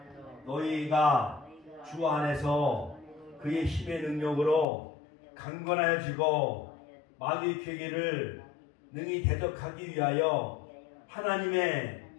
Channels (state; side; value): drops out; right; at 4.7 s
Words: 너희가 주 안에서 그의 힘의 능력으로 강건하여지고 마귀의 괴계를 능히 대적하기 위하여 하나님의